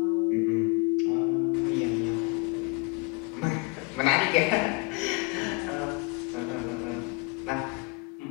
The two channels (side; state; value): right; quieter; 27.2 dB